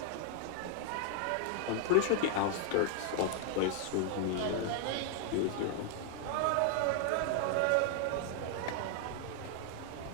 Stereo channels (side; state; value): both; different; correlation -0.01